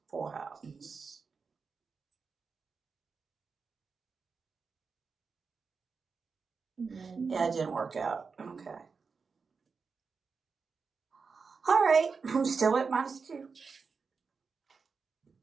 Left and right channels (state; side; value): quieter; left; 5.1 dB